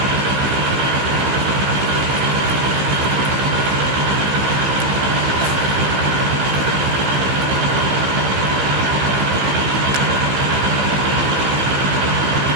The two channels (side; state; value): left; late; 15 ms